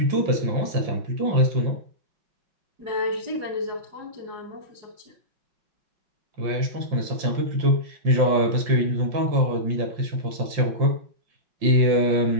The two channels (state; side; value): late; left; 5.7 ms